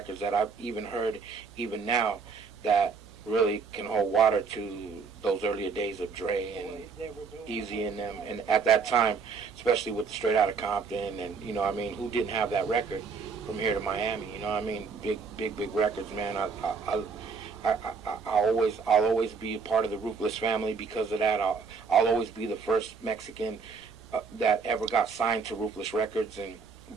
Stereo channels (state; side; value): quieter; left; 5.2 dB